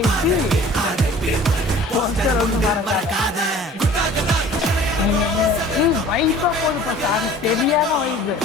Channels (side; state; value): both; normal; correlation 0.47